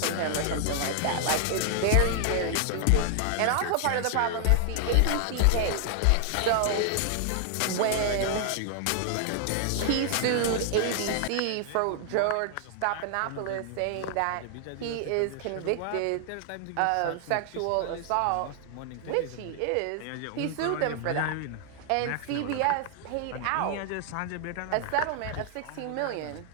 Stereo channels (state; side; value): different; both; correlation 0.00